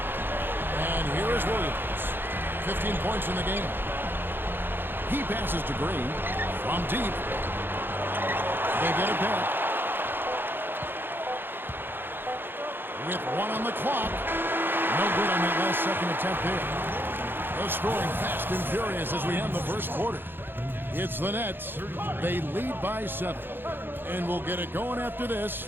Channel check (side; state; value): left; late; 0.10 ms